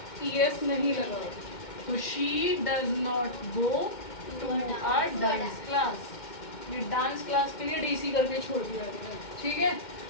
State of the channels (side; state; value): right; late; 2.1 ms